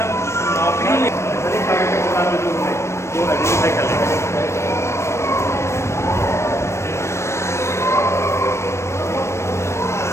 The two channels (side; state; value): right; late; 0.13 ms